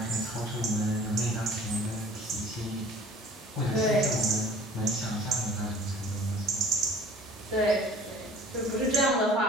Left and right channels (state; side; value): normal; both; correlation 0.49